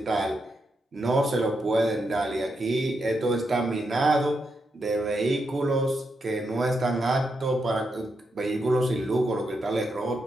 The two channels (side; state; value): both; normal; correlation 0.83